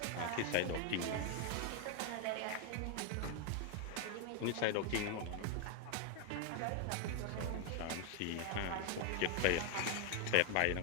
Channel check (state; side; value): different; both; correlation 0.01